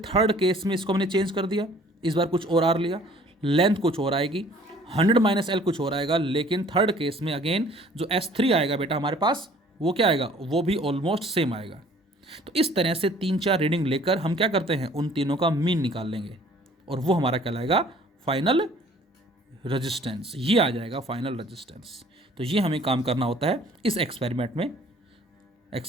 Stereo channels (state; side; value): normal; both; correlation 0.54